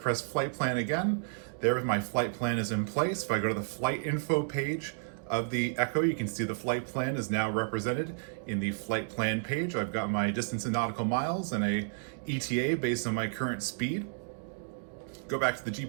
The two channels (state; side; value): silent; left; digital silence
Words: flight plan again. There my flight plan is in place. If I go to the flight info page, of the Echo, you can see the flight plan is now represented in the flight plan page. I've got my distance in nautical miles and a ETA based on my current speed. Go back to the